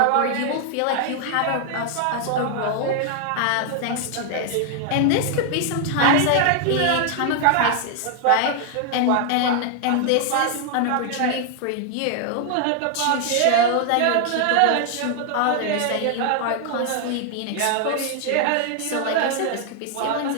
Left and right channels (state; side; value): different; both; correlation 0.00